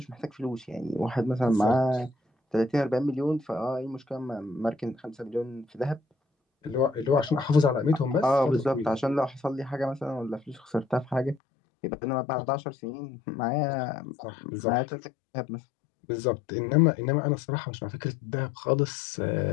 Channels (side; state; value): right; drops out; at 11.4 s